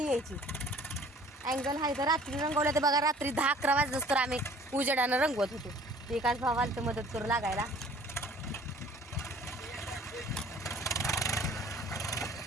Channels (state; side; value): normal; both; correlation 0.51